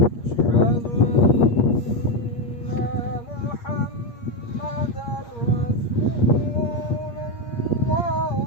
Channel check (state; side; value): late; right; 8.5 ms